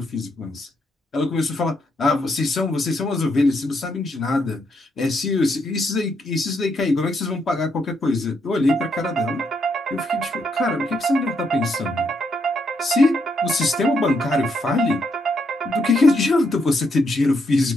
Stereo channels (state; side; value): normal; both; correlation 0.77